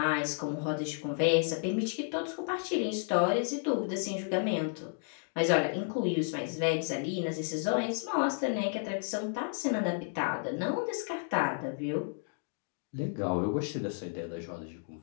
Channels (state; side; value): silent; right; 56 dB below the other